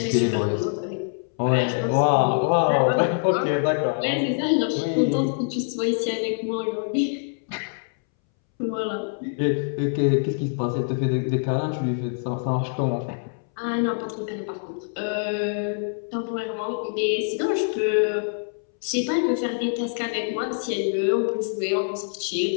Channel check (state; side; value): silent; right; 62 dB below the other